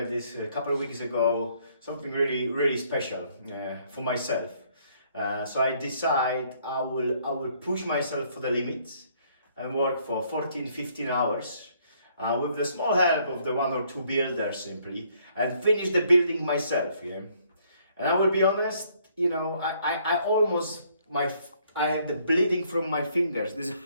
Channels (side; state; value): both; inverted; correlation -0.66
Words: a couple of weeks ago something really special for myself. So I decide I will push myself for the limits and work for 14-15 hours with the small help of the 1 or 2 builders simply, and finish the building myself. Yeah. And I will be honest, I almost I had the bleeding from my fingers. This is